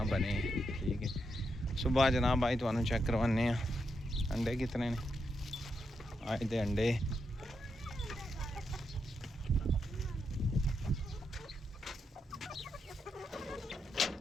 बने। ठीक है, सुबह जनाब अज तुहानू चेक करवाने अंडे कितने ने। अज दे अंडे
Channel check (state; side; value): normal; both; correlation 0.83